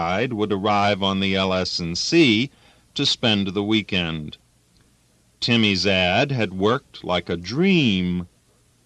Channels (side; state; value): both; identical; correlation 1.00